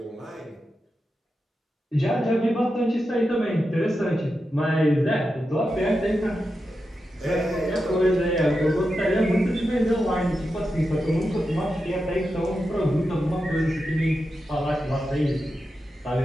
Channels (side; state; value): both; normal; correlation 0.89